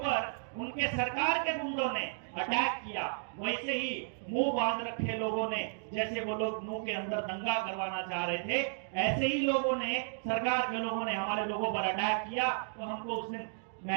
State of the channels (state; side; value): silent; left; digital silence